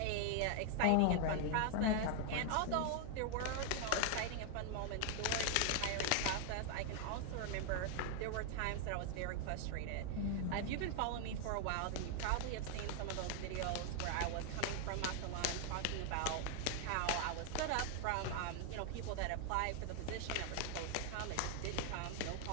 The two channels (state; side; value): different; both; correlation 0.00